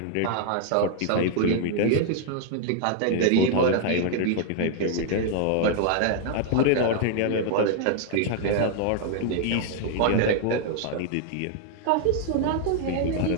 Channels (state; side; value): different; both; correlation 0.00